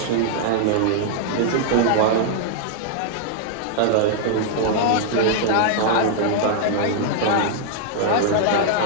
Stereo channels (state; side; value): different; both; correlation -0.01